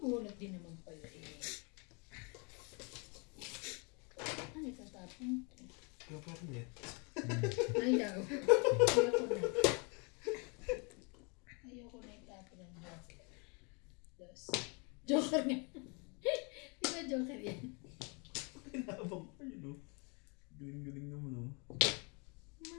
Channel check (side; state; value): right; quieter; 32.8 dB